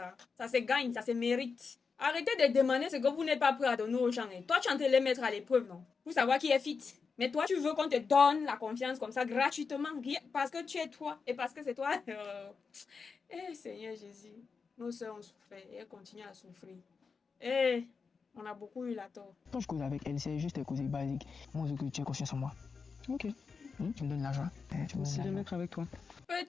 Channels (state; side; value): quieter; right; 5.2 dB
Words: Ça se gagne, ça se mérite. Arrêtez de demander ce que vous n'êtes pas prêt à donner aux gens. Et toi, tu es en train de les mettre à l'épreuve, non? Pour savoir qui est fit. Mais toi, tu veux qu'on te donne la confiance comme ça, gratuitement, parce que tu es toi et parce que c'est toi. Eh, Seigneur Jésus, nos sœurs ont souffert et elles continuent à souffrir. Eh, on a beaucoup eu la tort. Quand je cause avec elle, c'est juste des causes basiques. Moi, je veux que tu aies confiance en moi. Ok. Tu me donnes l'argent. Tu me Aussi donnes de l'argent. mettre avec toi.